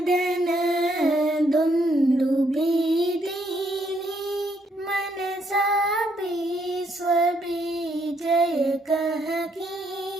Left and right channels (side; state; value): both; normal; correlation 0.72